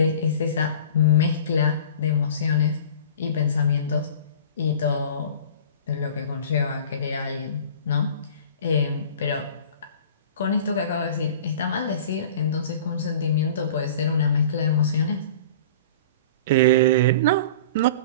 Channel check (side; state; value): both; inverted; correlation -0.40